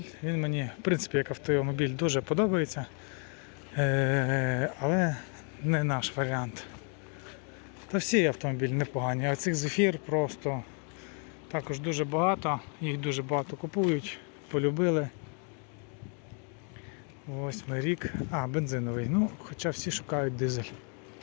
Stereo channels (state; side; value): quieter; right; 39.9 dB